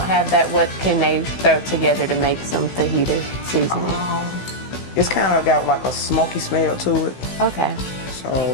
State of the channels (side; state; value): right; late; 16 ms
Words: have that, what can they throw together to make some fajita seasoning? It's kind of got like a smoky smell to it. Okay. So,